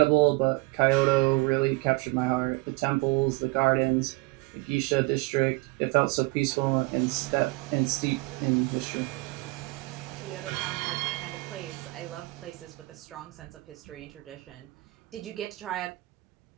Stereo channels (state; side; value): quieter; left; 24.1 dB